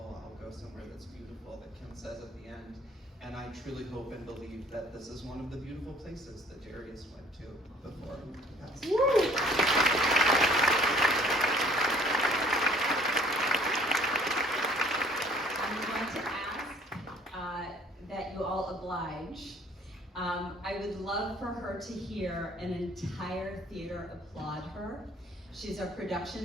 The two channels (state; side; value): normal; both; correlation 0.55